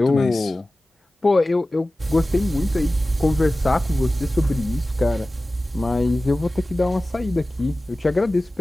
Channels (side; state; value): both; normal; correlation 0.96